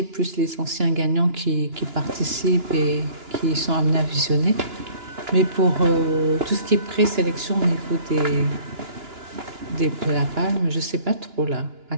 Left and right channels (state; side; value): late; left; 2.9 ms